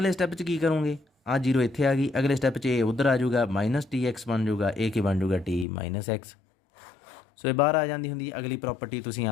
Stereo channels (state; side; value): drops out; right; at 5.7 s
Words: ਸਟੈਪ 'ਚ ਕੀ ਕਰੋਗੇ, ਆਹ 0 ਇੱਥੇ ਆ ਗਈ, ਅਗਲੇ ਸਟੈਪ 'ਚ ਇਹ ਉੱਧਰ ਆ ਜਾਊਗਾ, -TX ਬਣ ਜਾਊਗਾ, ਇਹ ਕੀ ਬਣ ਜਾਊਗਾ T - X। ਸੋ ਇਹ ਬਾਹਰ ਆ ਜਾਂਦੀ ਹੁੰਦੀ। ਅਗਲੀ ਪ੍ਰੋਪਰਟੀ ਤੁਸੀਂ